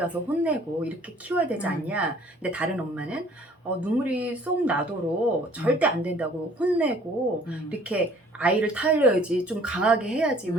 혼내고 이렇게 키워야 되지 않냐. 근데 다른 엄마는 눈물이 쏙 나도록 절대 안 된다고 혼내고 이렇게 아이를 타일러야지, 좀 강하게 해야지,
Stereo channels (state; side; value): normal; both; correlation 0.55